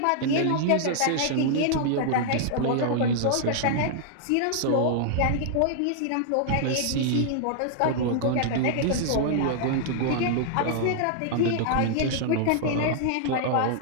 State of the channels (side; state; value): both; different; correlation -0.01